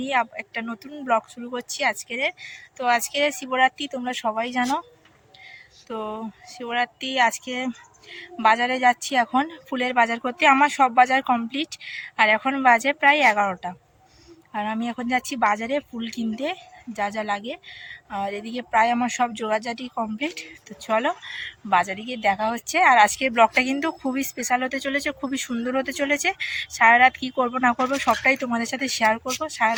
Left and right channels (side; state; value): both; identical; correlation 1.00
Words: একটা নতুন ব্লগ শুরু করছি আজকের। তো আজকে শিবরাত্রি, তোমরা সবাই জানো। তো শিবরাত্রি আজকে বাজারে যাচ্ছি, এখন ফুলের বাজার করতে। আমার সব বাজার কমপ্লিট, আর এখন বাজে প্রায় 11টা। আর আমি এখন যাচ্ছি বাজারে ফুল কিনতে, যা যা লাগে। আর এদিকে প্রায় আমার সব জোগাড়জাটি কমপ্লিট। তো চলো বাজারে গিয়ে দেখা হচ্ছে। আর আজকের ব্লগটা কিন্তু খুবই স্পেশাল হতে চলেছে, খুবই সুন্দর হতে চলেছে। সারা রাত কী করবো না করবো সবটাই তোমাদের সাথে শেয়ার করব। সারা